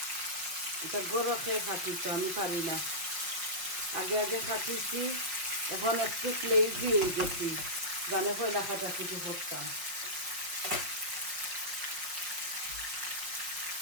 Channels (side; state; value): left; late; 5.7 ms